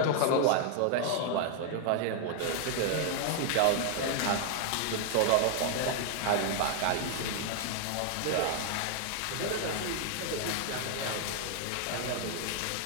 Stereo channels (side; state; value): both; different; correlation 0.00